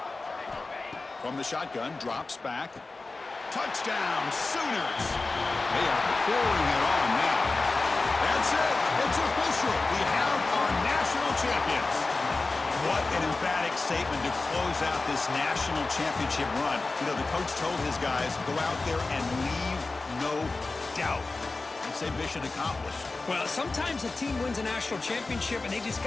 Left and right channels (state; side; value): quieter; right; 3.5 dB